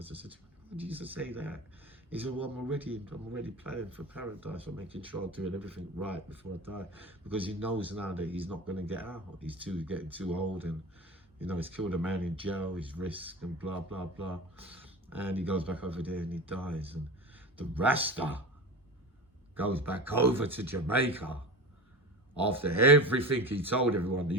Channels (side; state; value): both; normal; correlation 0.30